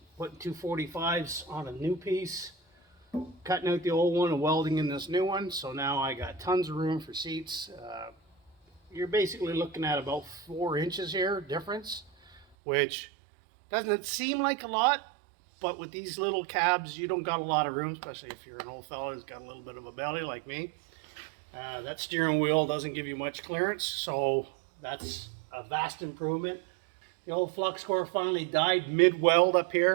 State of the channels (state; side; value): drops out; left; at 12.5 s